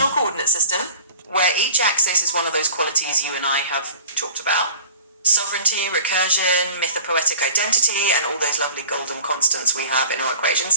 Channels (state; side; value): inverted; both; correlation -0.42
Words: coordinate system where each axis is one of those qualities you and I have talked about. Sovereignty, recursion, mythopoetic identity, and all those lovely golden constants we have in our equation